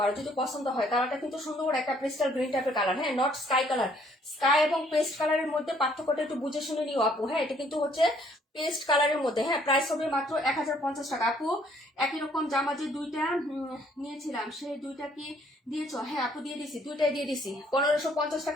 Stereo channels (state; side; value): normal; both; correlation 0.63